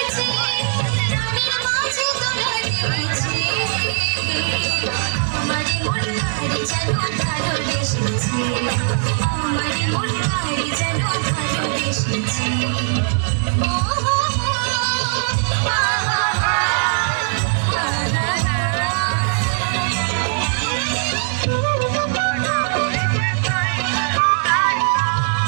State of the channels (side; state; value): left; silent; digital silence